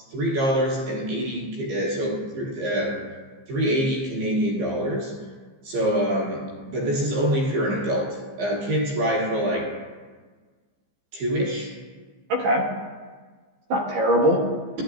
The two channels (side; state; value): left; late; 15 ms